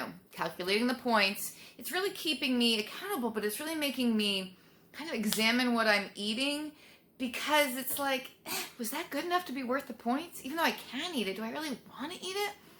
calculating the points, it's really keeping me accountable, but it's really making me kind of examine what I'm eating, because it's like, was that good enough to be worth the points? Even though I can eat it, do I really want to eat it?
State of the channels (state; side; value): identical; both; correlation 1.00